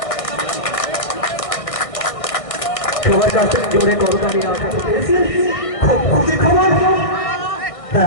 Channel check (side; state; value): right; late; 1.6 ms